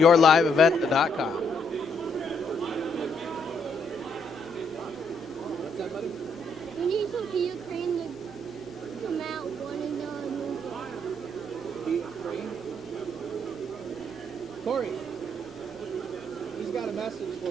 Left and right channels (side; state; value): left; noise; hum, 29 dB below the sound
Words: We need some Ukraine to come out one and Corey, he's got a message